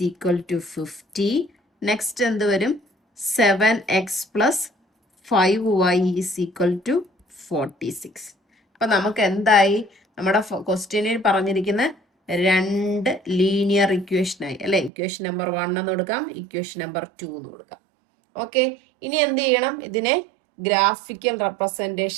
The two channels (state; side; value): drops out; left; at 14.9 s